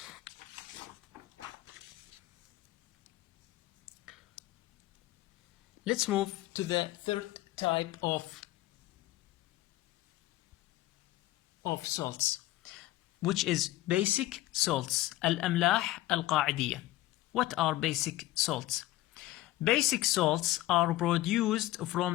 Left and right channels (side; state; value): right; quieter; 16.3 dB